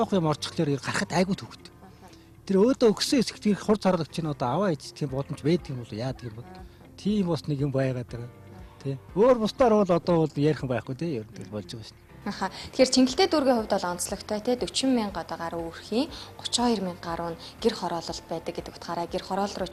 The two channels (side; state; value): both; identical; correlation 1.00